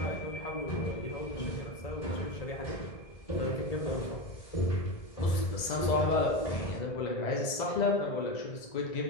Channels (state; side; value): late; right; 2.0 ms